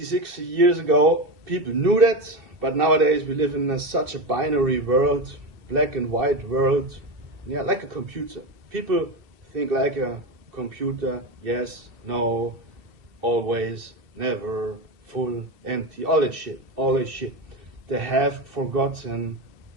60 years ago, people knew that, but nowadays we live in such a binary world, black and white world, yeah, like a computer. People think like a computer, yes, no, always, never, full, empty, all that shit. They have forgotten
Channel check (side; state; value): left; late; 2.7 ms